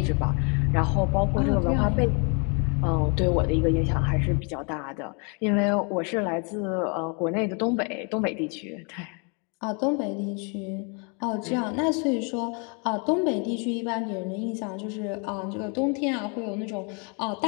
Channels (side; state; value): right; quieter; 35.8 dB